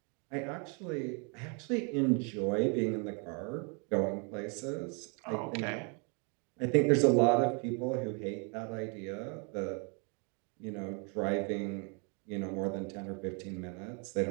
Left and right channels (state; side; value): quieter; left; 36.5 dB